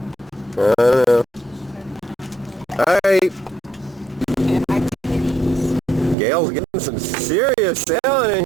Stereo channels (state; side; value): drops out; left; at 6.2 s